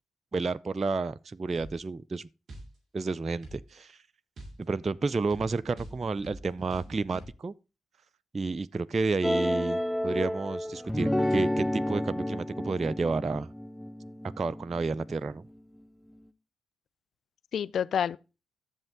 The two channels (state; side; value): normal; both; correlation 0.91